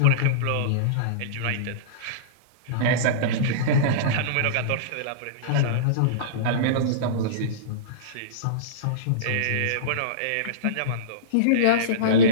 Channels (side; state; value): both; different; correlation -0.05